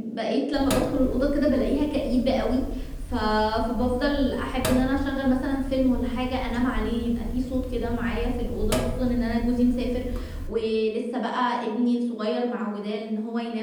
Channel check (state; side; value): identical; both; correlation 1.00